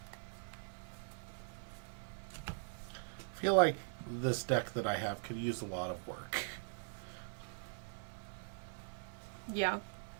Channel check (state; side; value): silent; left; 50 dB below the other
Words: feel like this deck that I have could use a lot of work. Yeah.